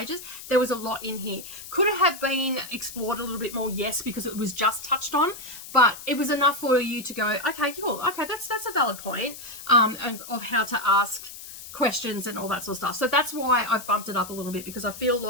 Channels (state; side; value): noise; left; hiss, 13 dB below the sound